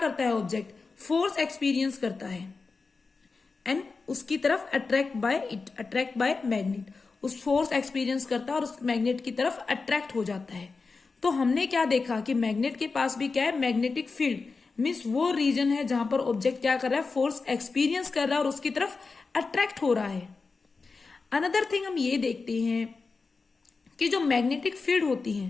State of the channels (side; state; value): right; quieter; 4.3 dB